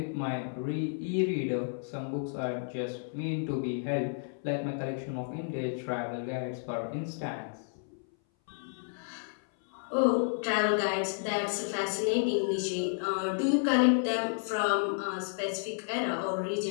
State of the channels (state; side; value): silent; right; 57 dB below the other